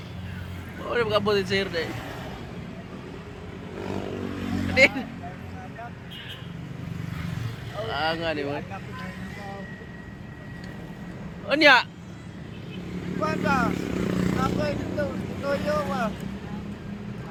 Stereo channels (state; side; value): identical; both; correlation 1.00